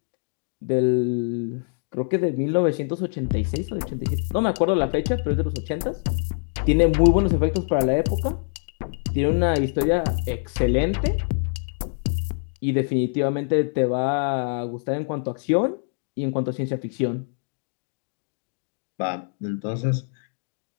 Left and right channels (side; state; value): right; silent; digital silence